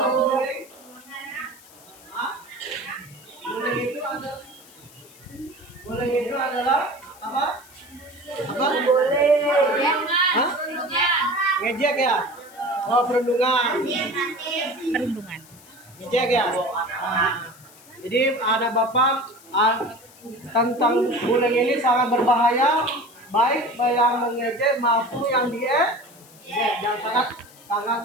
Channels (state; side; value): noise; left; hiss, 23 dB below the sound